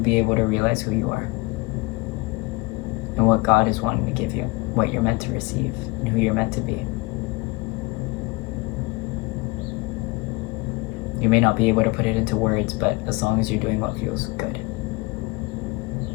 able to realize who you are and what God is wanting to give you, what you're meant to receive, and who you're meant to be. You may not be able to put it into words, but as long as you're doing what feels good.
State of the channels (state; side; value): quieter; right; 24.3 dB